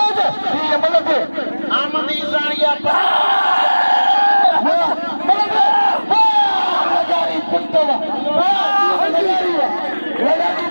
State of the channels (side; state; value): both; inverted; correlation -1.00